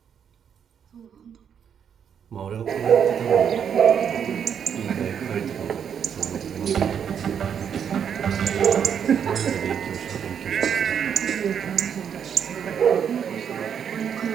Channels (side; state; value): left; quieter; 8.0 dB